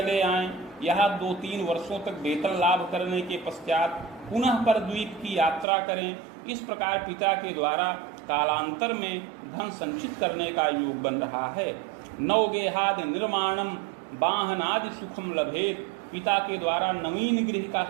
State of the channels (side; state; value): left; drops out; at 5.7 s